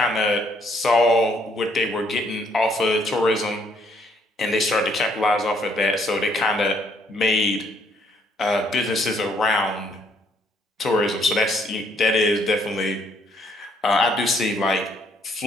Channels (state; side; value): normal; both; correlation 0.67